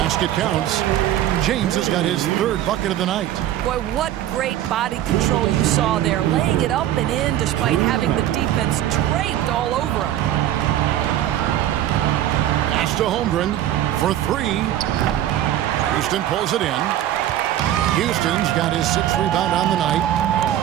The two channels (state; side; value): quieter; left; 12.3 dB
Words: counts. James has got his third bucket of the night. Boy, what great body control you saw there, laying it up and in despite having the defense draped all over him. Pass to Holmgren for three. Houston pulls it in. Houston's got his sixth rebound on the night.